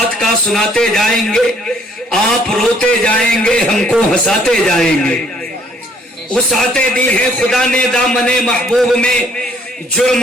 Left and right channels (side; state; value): both; normal; correlation 0.63